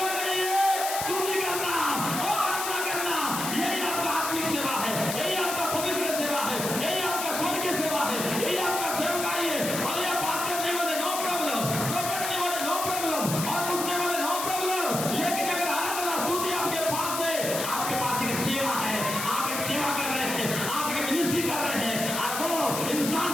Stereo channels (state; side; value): noise; left; hiss, 4 dB below the sound